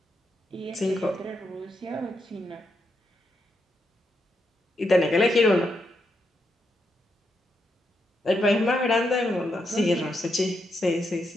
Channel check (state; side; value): normal; both; correlation 0.82